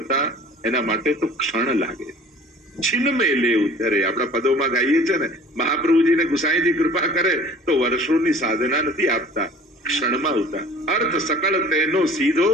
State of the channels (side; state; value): both; normal; correlation 0.47